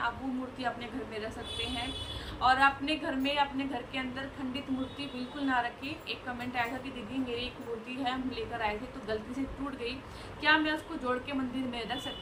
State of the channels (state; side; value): identical; both; correlation 1.00